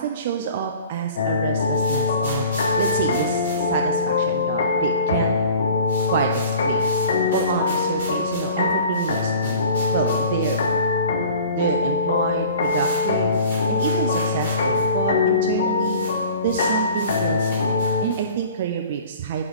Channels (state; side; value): inverted; both; correlation -0.45